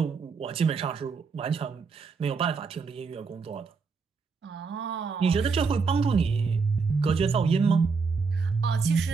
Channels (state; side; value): quieter; left; 5.0 dB